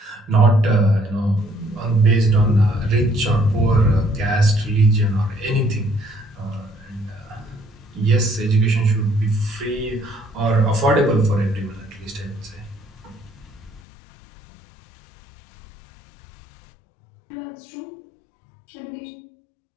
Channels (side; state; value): right; drops out; at 13.8 s